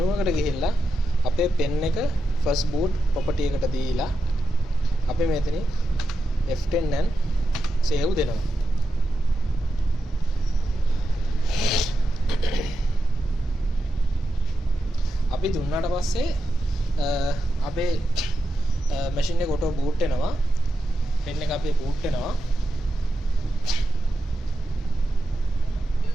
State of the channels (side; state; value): both; normal; correlation 0.88